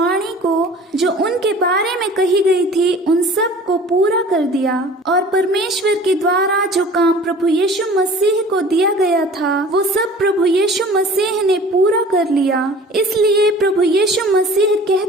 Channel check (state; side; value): normal; both; correlation 0.45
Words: को जो उनके बारे में कही गई थी उन सब को पूरा कर दिया। और परमेश्वर के द्वारा जो काम प्रभु यीशु मसीह को दिया गया था वो सब प्रभु यीशु मसीह ने पूरा कर लिया। इसलिए प्रभु यीशु मसीह